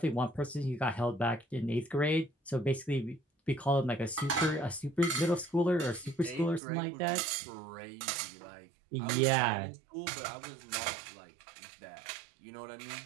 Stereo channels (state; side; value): drops out; left; at 6.6 s